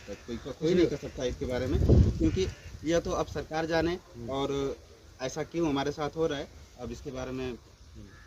है। कोई नहीं कर सकता इसके बारे में, क्योंकि यह तो अब सरकार जाने और ऐसा क्यों हमारे साथ हो रहा है। अब इसके बारे में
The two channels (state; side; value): identical; both; correlation 1.00